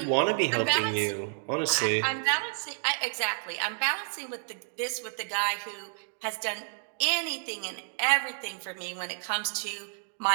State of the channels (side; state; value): left; silent; digital silence